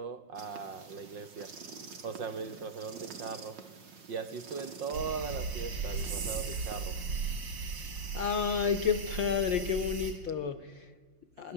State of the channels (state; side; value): late; left; 5.6 ms